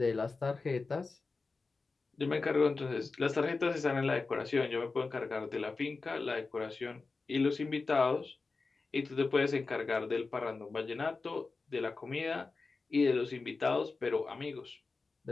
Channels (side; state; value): right; quieter; 4.0 dB